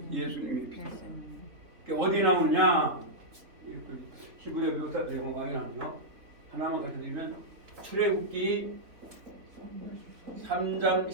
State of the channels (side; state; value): left; late; 3.8 ms